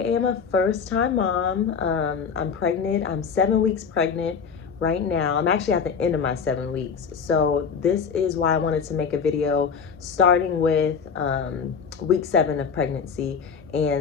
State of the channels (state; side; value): quieter; right; 6.2 dB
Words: a first-time mom. I'm pregnant. I'm 7 weeks pregnant right now. I'm actually at the end of my 7 weeks. So this is why I wanted to make a video starting with week 7 of pregnancy